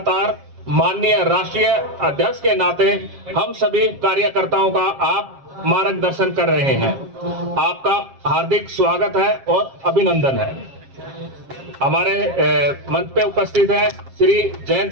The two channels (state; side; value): late; left; 7.4 ms